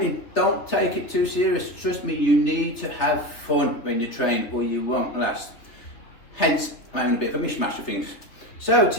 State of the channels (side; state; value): right; late; 3.2 ms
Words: Don't take it too serious. Trust me, you need to have fun when you train or you won't last. Hence, I'm having a bit of a mishmash of things. So